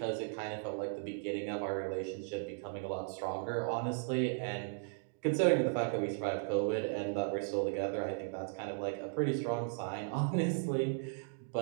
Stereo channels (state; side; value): silent; left; digital silence